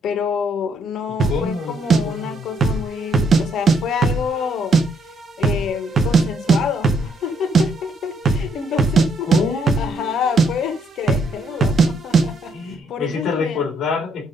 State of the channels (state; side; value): normal; both; correlation 0.71